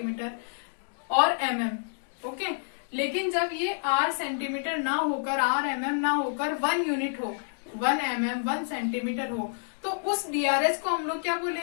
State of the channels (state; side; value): silent; right; digital silence